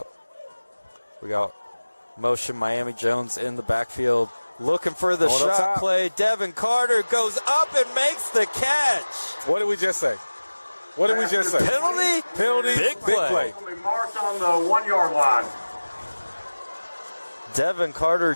We got motion Miami Jones in the backfield. Looking for the shot play. Devin Carter goes up and makes the catch. What did we just say? What did we just say? Penalty, big play. Will be marked on the 1-yard line. Devin Carter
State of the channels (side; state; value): both; inverted; correlation -1.00